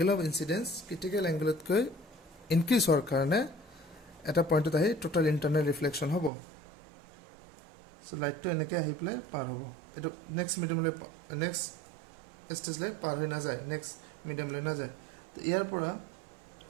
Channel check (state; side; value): drops out; left; at 6.3 s